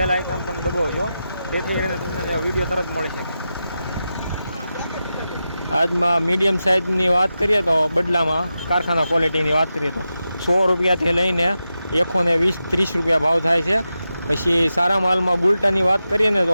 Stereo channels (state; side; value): inverted; both; correlation -0.90